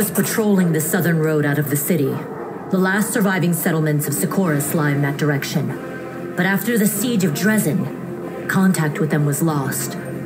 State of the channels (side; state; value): both; identical; correlation 1.00